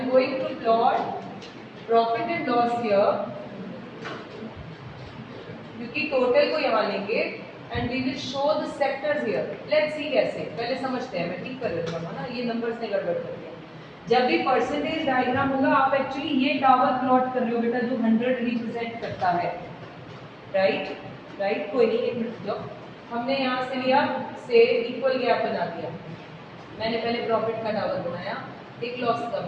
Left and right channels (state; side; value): identical; both; correlation 1.00